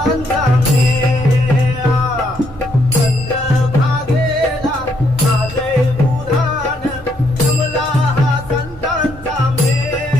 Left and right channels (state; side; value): normal; both; correlation 0.73